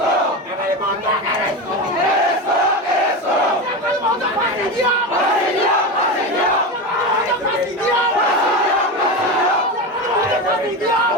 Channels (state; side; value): normal; both; correlation 0.20